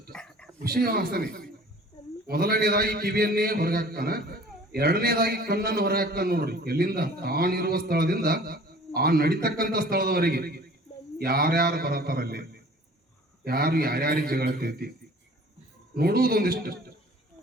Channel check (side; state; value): both; normal; correlation 0.48